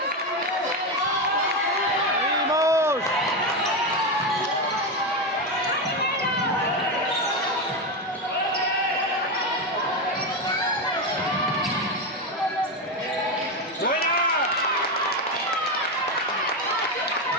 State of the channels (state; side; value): normal; both; correlation 0.12